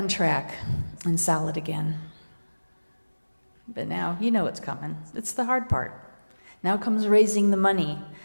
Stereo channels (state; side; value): inverted; both; correlation -1.00